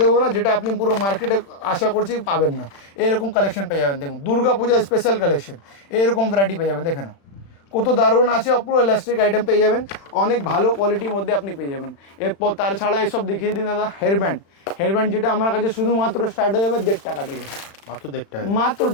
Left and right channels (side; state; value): right; late; 36 ms